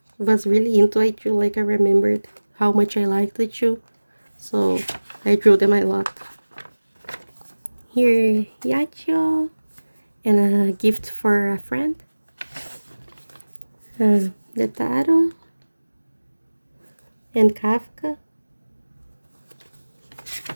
was really into Aichu, like I remembered how much I liked Aichu. So I drew them a lot. Here, Yachio, and a gift for a friend. Netaro, and Kafka.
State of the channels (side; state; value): both; inverted; correlation -1.00